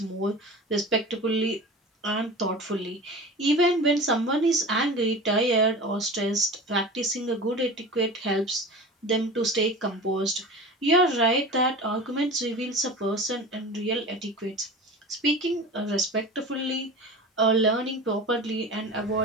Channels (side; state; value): both; normal; correlation 0.34